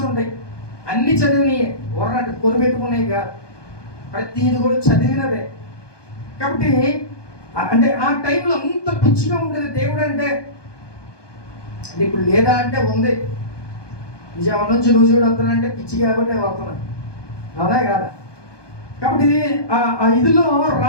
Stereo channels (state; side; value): late; right; 1.2 ms